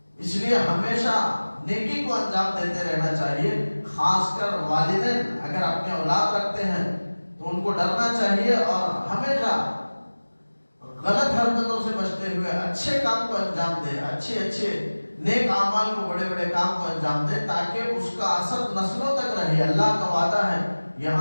اس لیے ہمیشہ نیکی کو انجام دیتے رہنا چاہیے. خاص کر والدین اگر اپنے اولاد رکھتے ہیں تو ان کو ڈرنا چاہیے اور ہمیشہ غلط حرکتوں سے بچتے ہوئے اچھے کام کو انجام دے, اچھے نیک اعمال کو, بڑے بڑے کام کو انجام دے تاکہ اس کا اثر نسلوں تک رہے. اللہ کا وعدہ ہے,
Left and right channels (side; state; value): both; inverted; correlation -1.00